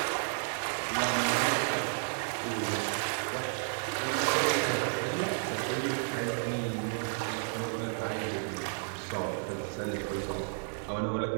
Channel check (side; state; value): left; silent; digital silence